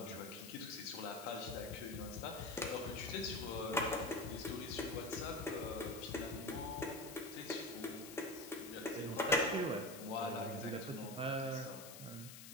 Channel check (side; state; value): left; noise; hiss, 12 dB below the sound